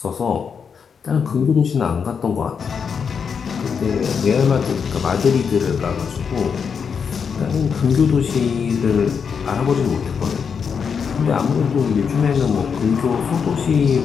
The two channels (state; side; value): quieter; right; 6.4 dB